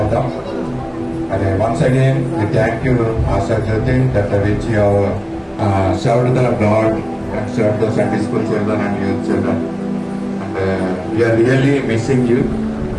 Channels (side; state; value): both; identical; correlation 1.00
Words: మరి once again we thank you Asha Jyoti that which you served the God and served the Sunday school children and youth children, and we are really missing you.